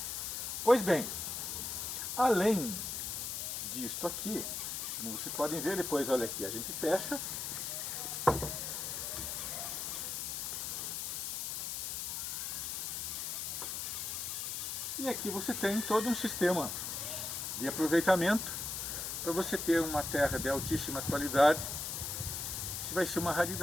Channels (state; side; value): noise; left; hiss, 3 dB below the sound